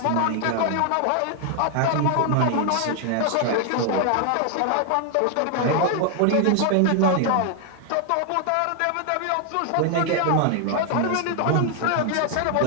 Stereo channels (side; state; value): both; different; correlation 0.00